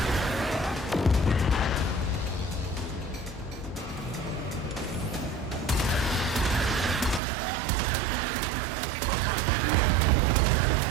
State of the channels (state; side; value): drops out; left; at 7.2 s